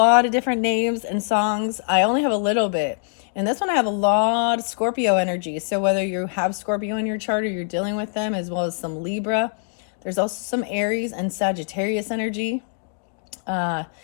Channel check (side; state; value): right; silent; 63 dB below the other